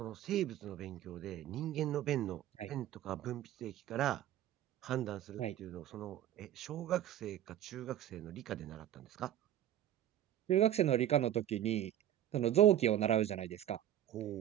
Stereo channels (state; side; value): quieter; left; 11.7 dB